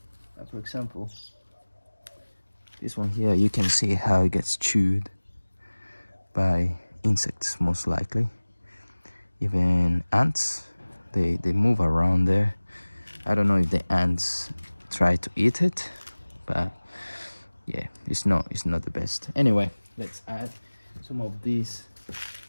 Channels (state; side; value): inverted; both; correlation -1.00